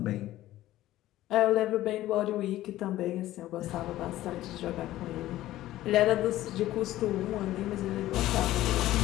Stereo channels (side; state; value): right; quieter; 15.0 dB